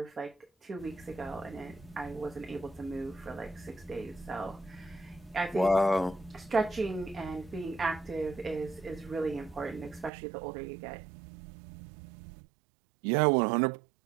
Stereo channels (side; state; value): left; drops out; at 10.1 s